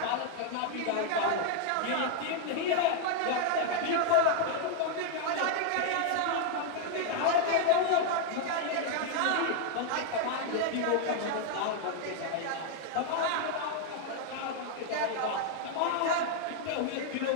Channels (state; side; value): different; both; correlation 0.00